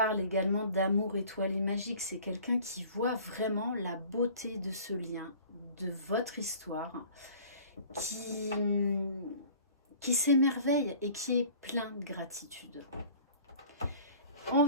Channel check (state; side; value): inverted; both; correlation -0.48